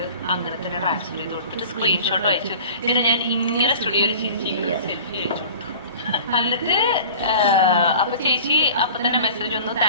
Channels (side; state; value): both; inverted; correlation -0.42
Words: അങ്ങനെ തന്നെ ട്രാൻസ്ഫർ ചെയ്ത് കൊടുത്തിട്ട് സ്ക്രീൻഷോട്ട് അയച്ചു. പിന്നെ ഞാൻ ഇങ്ങനെ സ്റ്റുഡിയോയിൽ ചിരിച്ചിങ്ങനെ ഒരു സെൽഫി അയച്ചു കൊടുത്തു. എന്നിട്ട് അപ്പൊ ചേച്ചി അപ്പൊ തന്നെ മെസ്സേജ് വന്നു,